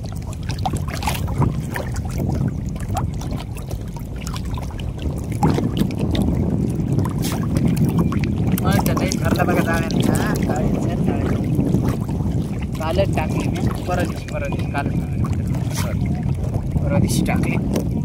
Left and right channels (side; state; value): both; identical; correlation 1.00